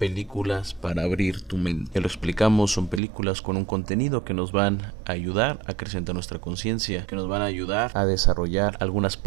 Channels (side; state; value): left; drops out; at 3.0 s